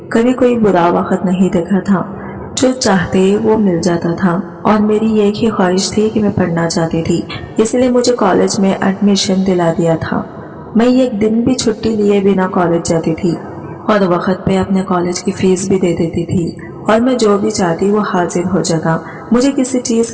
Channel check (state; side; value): identical; both; correlation 1.00